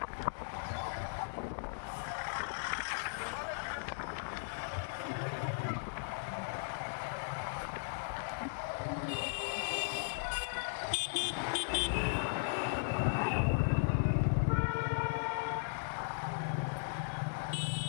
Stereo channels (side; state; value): right; silent; digital silence